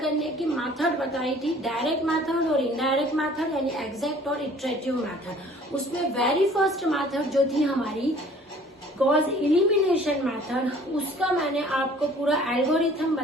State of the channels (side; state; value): both; normal; correlation 0.53